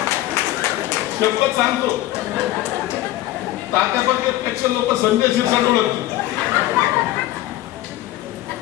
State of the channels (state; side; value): quieter; right; 15.5 dB